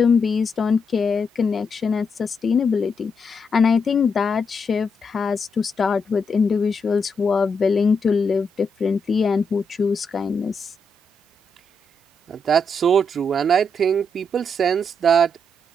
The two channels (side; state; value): both; normal; correlation 0.80